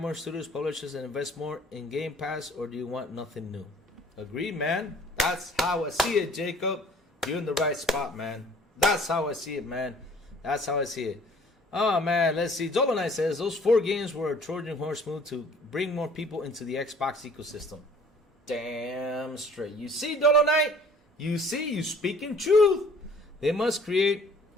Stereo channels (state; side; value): normal; both; correlation 0.53